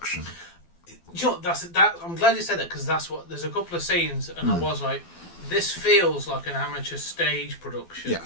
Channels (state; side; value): late; right; 12 ms